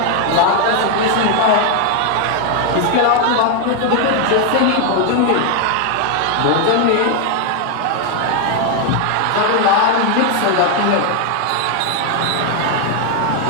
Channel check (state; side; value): different; both; correlation 0.00